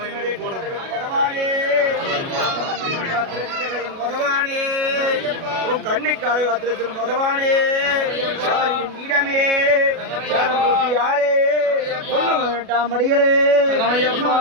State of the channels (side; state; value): left; late; 37 ms